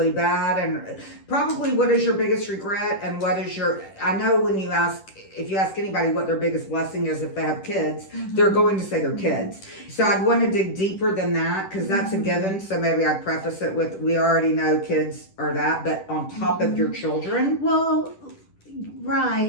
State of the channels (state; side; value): late; right; 10 ms